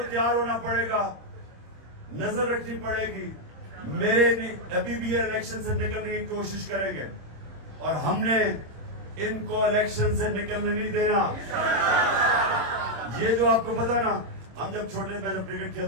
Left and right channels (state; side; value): late; left; 26 ms